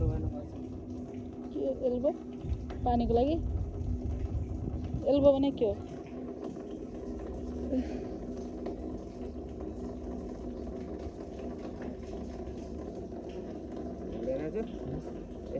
गर्नुपर्छ के एल्बो पानीको लागि एल्बो भने के हो हुँदैन चाहिँ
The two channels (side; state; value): both; identical; correlation 1.00